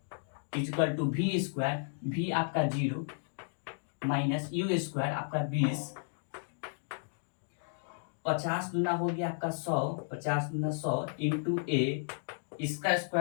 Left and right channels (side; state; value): right; silent; digital silence